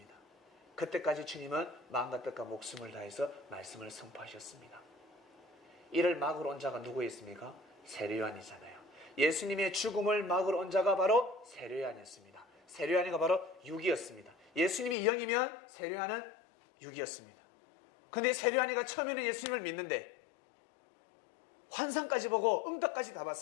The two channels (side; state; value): right; drops out; at 15.0 s